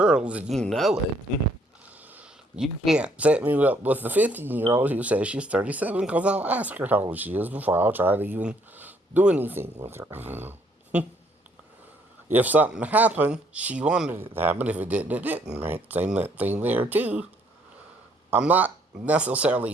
and you know it, you can't set me up with the 15-year-old who says she's 37 because I'll ask her how old she is before I'll try to even do anything with her. If something happened, she wanted it to happen. If it didn't, it didn't, right? Same thing there, too. I'm not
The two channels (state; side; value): normal; both; correlation 0.67